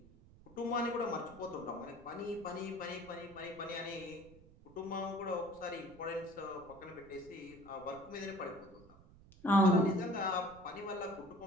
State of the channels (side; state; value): right; noise; rumble, 22 dB below the sound